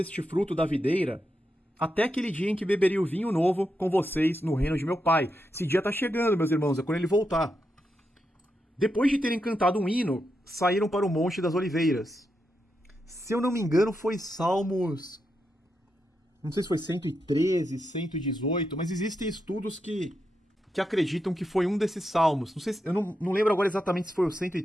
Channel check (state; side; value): normal; both; correlation 0.85